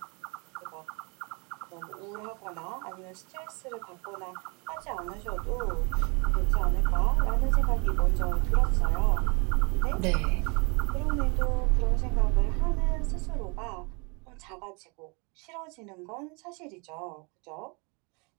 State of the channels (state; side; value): quieter; left; 31.4 dB